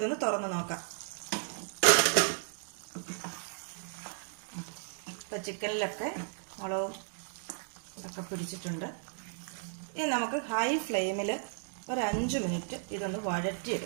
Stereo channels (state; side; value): silent; left; digital silence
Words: തുറന്ന് നോക്കാം. ഇപ്പം ചിക്കനിലൊക്കെ മുളകും ഒക്കെ പിടിച്ചിട്ടുണ്ട്. ഇനി നമുക്ക് ഹൈ ഫ്ലെയിമിൽ ഒരു 5 മിനിറ്റ് ഇതൊന്ന്